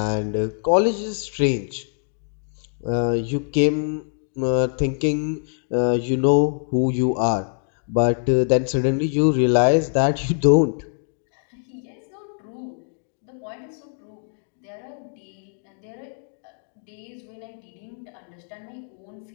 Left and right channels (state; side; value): silent; right; digital silence